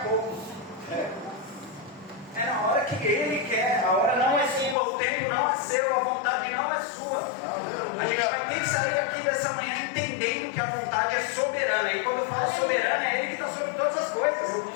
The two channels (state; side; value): drops out; right; at 4.8 s